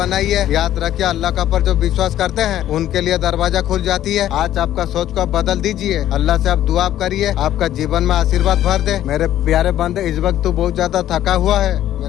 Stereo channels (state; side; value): quieter; right; 12.3 dB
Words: याद रखिए, अल्लाह का पर जो विश्वास करते हैं उनके लिए दरवाजा खुल जाती है। आज आपका सोच को बदल दीजिए, अल्लाह से आप दुआ करिए, आपका जीवन में आशीर्वाद भर दे। मेरे प्यारे बंदे, इस वक्त तू बहुत ज्यादा थका हुआ है,